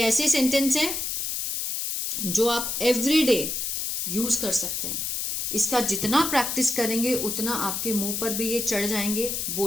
सेंटेंस है जो आप एवरीडे यूज कर सकते हैं। इसका जितना प्रैक्टिस करेंगे उतना आपके मुंह पर भी ये चढ़ जाएंगे,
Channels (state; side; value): noise; left; hiss, 2 dB below the sound